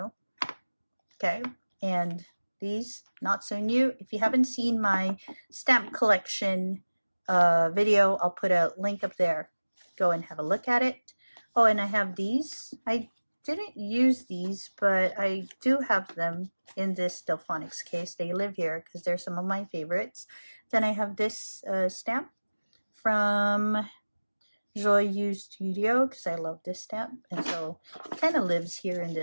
okay, and these not so new. If you haven't seen my stamp collection video, I'll put a link up there. Go and have a look at it. Oh, and I have these. I didn't use these, but I do have them in this Delfonics case. They live here because they're some of my favorites. Then I have this stamp from Joyeux Studio because I love this stamp, and so it kind of lives here in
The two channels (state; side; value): inverted; both; correlation -1.00